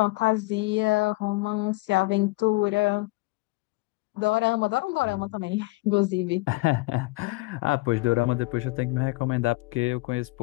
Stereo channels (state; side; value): quieter; right; 23.3 dB